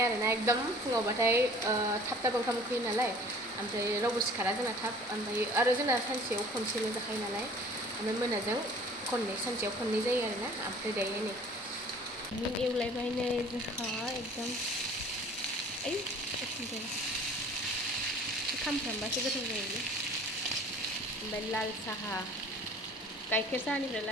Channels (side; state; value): both; normal; correlation 0.49